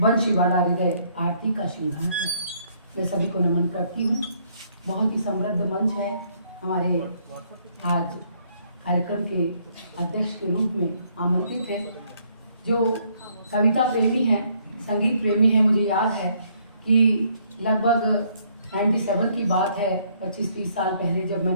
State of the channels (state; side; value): inverted; both; correlation -0.67